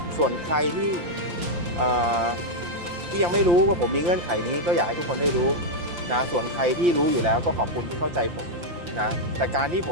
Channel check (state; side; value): late; left; 5.8 ms